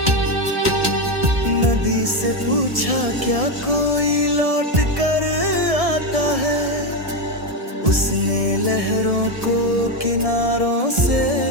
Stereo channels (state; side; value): late; left; 1.7 ms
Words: नदी से पूछा क्या कोई लौट कर आता है, उसने लहरों को किनारों से